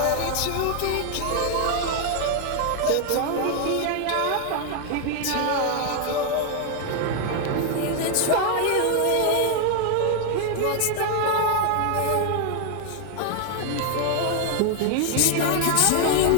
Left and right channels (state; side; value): different; both; correlation 0.00